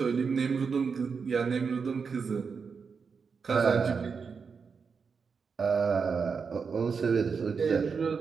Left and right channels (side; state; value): left; quieter; 5.6 dB